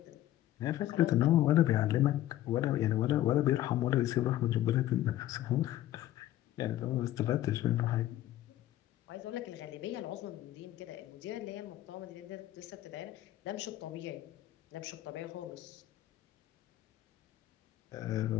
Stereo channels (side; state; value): right; quieter; 13.7 dB